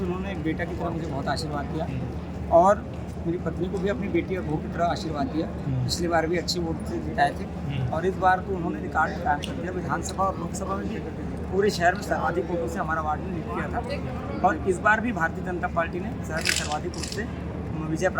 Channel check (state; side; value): identical; both; correlation 1.00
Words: उन्होंने एक बेटा की तरह मुझे बहुत आशीर्वाद दिया और मेरी पत्नी को भी अपनी बेटी और बहू की तरह आशीर्वाद दिया। पिछली बार भी अच्छी वोट से जिताए थे और इस बार तो उन्होंने रिकॉर्ड कायम कर दिया। विधानसभा और लोकसभा में भी पूरे शहर में सर्वाधिक वोटों से हमारा वार्ड ने लीड किया था और इस बार भी भारतीय जनता पार्टी ने शहर में सर्वाधिक वोट से विजय